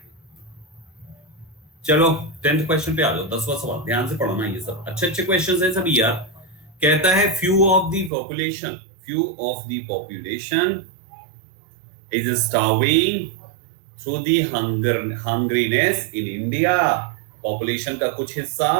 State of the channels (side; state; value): left; drops out; at 8.1 s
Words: चलो 10th क्वेश्चन पे आ जाओ, 10वां सवाल, ध्यान से पढ़ना, ये सब अच्छे अच्छे क्वेश्चंस हैं सभी यार। कहता है few of the population is starving through the hungriness in India. Population का कुछ हिस्सा